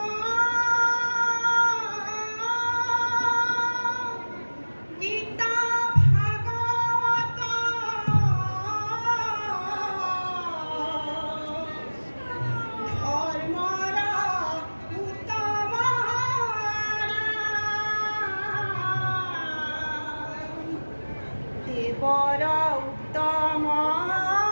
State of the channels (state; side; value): inverted; both; correlation -1.00